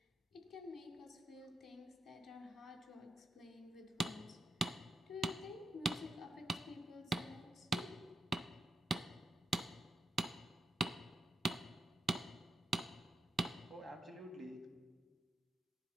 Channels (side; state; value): both; normal; correlation 0.84